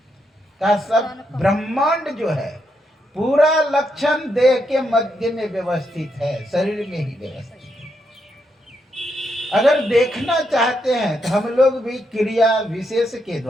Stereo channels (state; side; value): normal; both; correlation 0.80